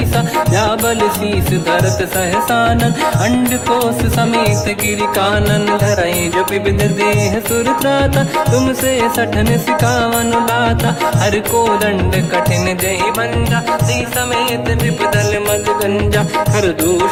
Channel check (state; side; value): identical; both; correlation 1.00